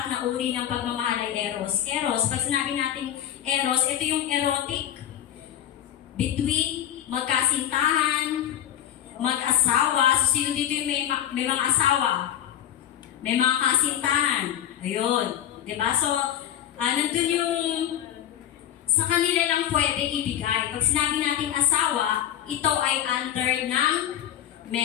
na uri ng pagmamahal ay Eros. Eros, pag sinabi natin Eros, ito yung erotic. Between magkasintahan, mag-asawa. So sino dito yung may mga asawa? May mga kasintahan. Ayun. Diba? So, nandun yung sa kanila lang pwede ibigay. Pag sinabi natin asawa, ito ay under ng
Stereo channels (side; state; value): right; quieter; 10.8 dB